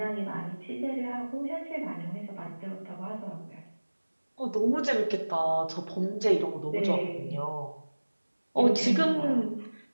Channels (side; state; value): both; inverted; correlation -1.00